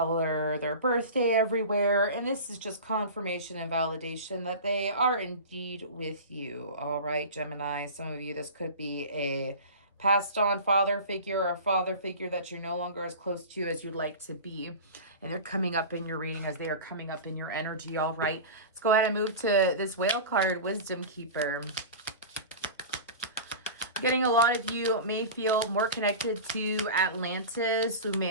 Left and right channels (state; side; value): inverted; both; correlation -0.32